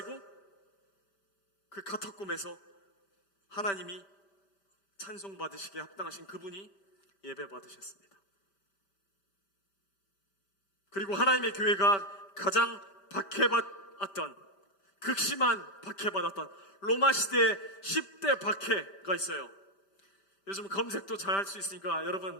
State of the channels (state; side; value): late; right; 5.1 ms